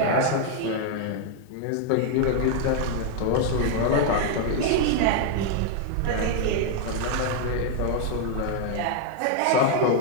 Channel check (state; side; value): different; both; correlation 0.00